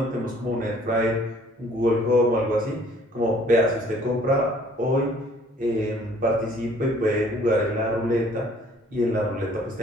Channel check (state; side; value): normal; both; correlation 0.57